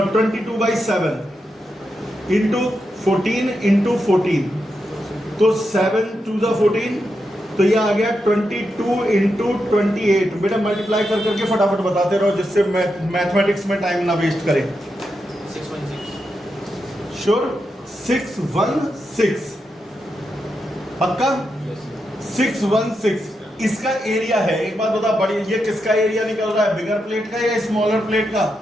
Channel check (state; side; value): normal; both; correlation 0.85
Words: इंटू 14 इंटू 14, तो 7 2 ज़ा 14, तो ये आ गया 22 इंटू 28। बेटा मल्टीप्लाई कर करके फटाफट बताते रहो, जिससे मैथमेटिक्स में टाइम ना वेस्ट करें। 616 श्योर? 616 पक्का? 616 इसका एरिया है। एक बात बता, बड़ी ये किसका एरिया निकल रहा है, बिगर प्लेट का या स्मॉलर प्लेट का?